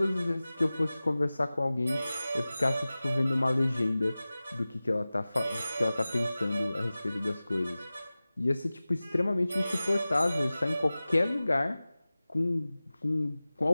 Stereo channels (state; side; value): inverted; both; correlation -0.97